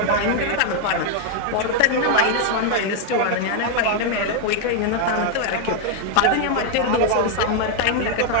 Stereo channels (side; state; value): both; different; correlation 0.00